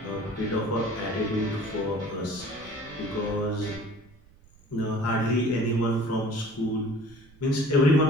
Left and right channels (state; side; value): noise; right; rumble, 25 dB below the sound